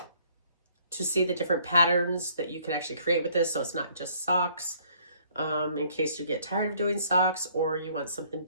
see the different patterns that you can actually create with this. So it's not just socks, in case you get tired of doing socks or you want something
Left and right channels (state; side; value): inverted; both; correlation -0.62